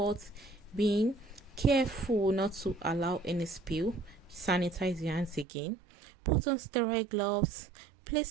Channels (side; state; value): left; drops out; at 5.5 s